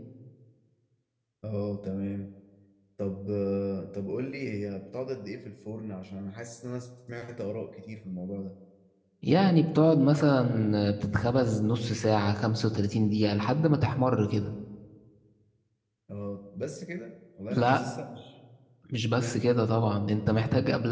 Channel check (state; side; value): identical; both; correlation 1.00